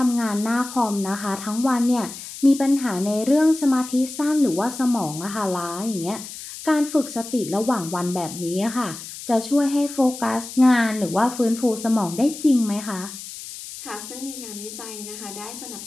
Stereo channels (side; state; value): left; noise; hiss, 12 dB below the sound